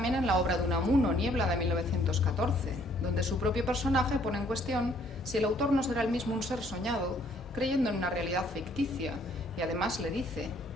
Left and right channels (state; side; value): normal; both; correlation 0.63